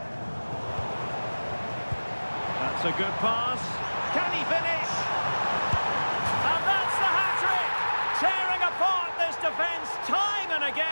That's a good pass. Can he finish? And that's the hat-trick! Tearing apart this defence time and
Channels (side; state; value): both; inverted; correlation -1.00